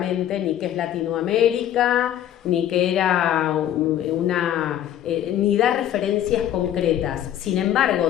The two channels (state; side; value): quieter; right; 11.3 dB